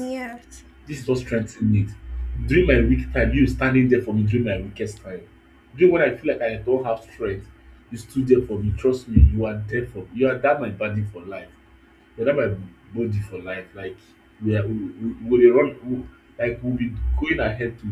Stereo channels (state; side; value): identical; both; correlation 1.00